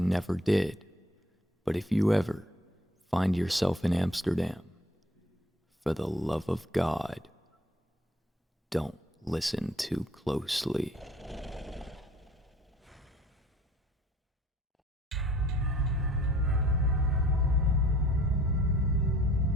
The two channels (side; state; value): both; normal; correlation 0.55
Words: did. But if you ever find yourself in Amsterdam, for the love of God, don't listen too closely.